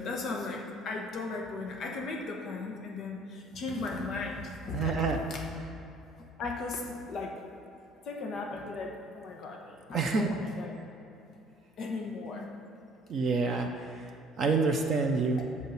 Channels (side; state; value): both; normal; correlation 0.56